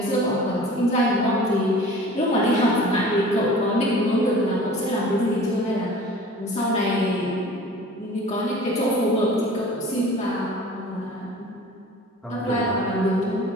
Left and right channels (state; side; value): normal; both; correlation 0.43